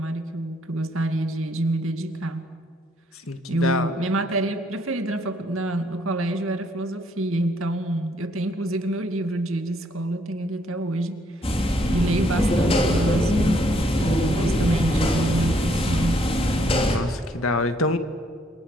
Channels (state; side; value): normal; both; correlation 0.68